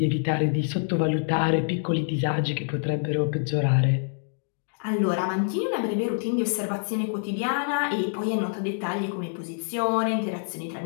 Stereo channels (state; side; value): silent; right; digital silence